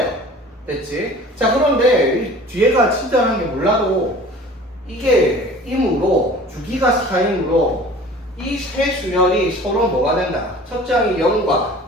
됐지? 자, 그런데 이 뒤에가 친절한 게 몰라도 이게 임으로 주기가 4이므로 이 세 수열이 서로 뭐가 된다? 첫째 항이 0과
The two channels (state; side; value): normal; both; correlation 0.44